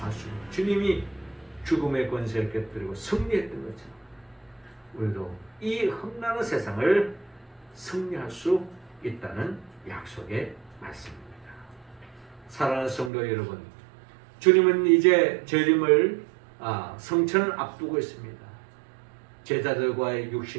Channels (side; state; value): left; drops out; at 13.1 s